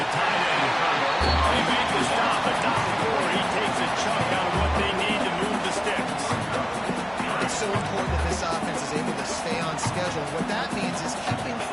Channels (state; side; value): identical; both; correlation 1.00